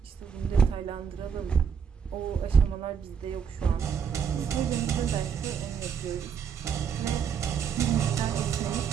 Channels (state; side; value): quieter; left; 7.0 dB